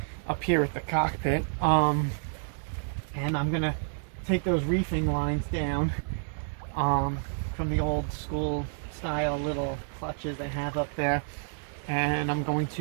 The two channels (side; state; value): left; silent; 58 dB below the other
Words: up here at the cockpit. And I'm going to take those reefing lines down from the old school style little clutches they have up there, and I'm going